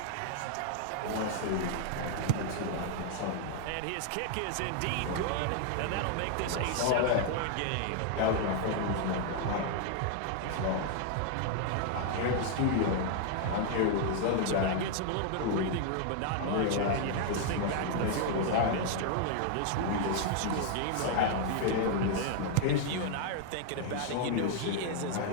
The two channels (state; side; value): different; both; correlation 0.00